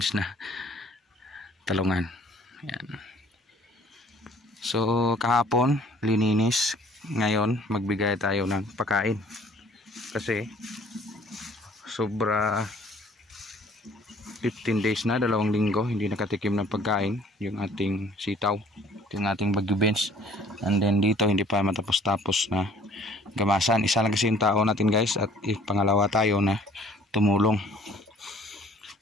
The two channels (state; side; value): normal; both; correlation 0.54